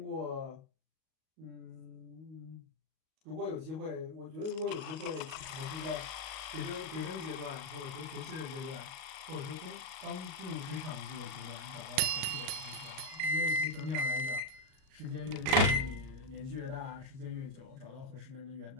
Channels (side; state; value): left; late; 38 ms